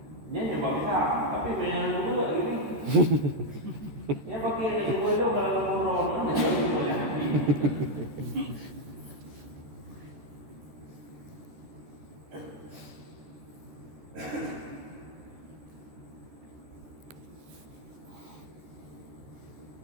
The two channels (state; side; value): late; left; 13 ms